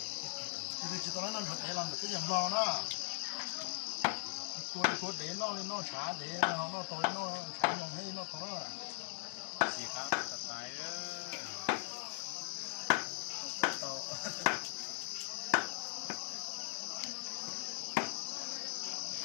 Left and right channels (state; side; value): silent; right; digital silence